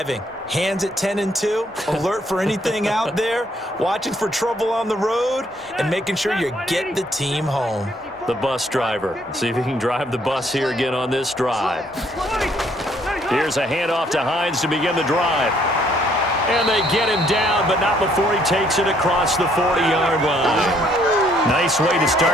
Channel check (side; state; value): both; normal; correlation 0.67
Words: Hands at 10 and 2, alert for anything out there, watching for trouble on the road, and making sure you get the team home. The bus driver. See if he can drive the bus here again on this drive. Here's a handoff to Hines to begin the drive. And they get him down, but not before he takes it across the 40-yard line. Nice way to